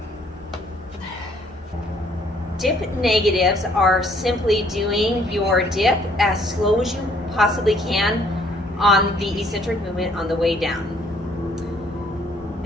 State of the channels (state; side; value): normal; both; correlation 0.63